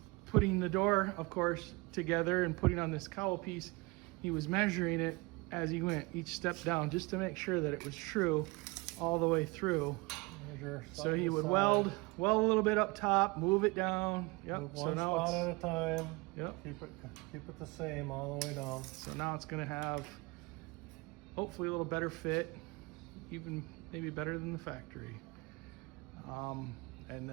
putting the door, of course, together and putting on this cowl piece, he was measuring it as he went each step down just to make sure that it was true all the way through. So he would weld a little bit up top, move it down. Yep. Move So one now spot it's, at a time. yep. Keep it the same all the way down. So now it's going to have hopefully a little better fit, even maybe better than the factory. And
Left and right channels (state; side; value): quieter; left; 25.9 dB